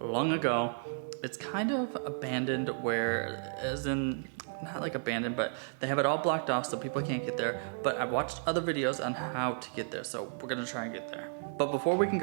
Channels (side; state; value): left; silent; digital silence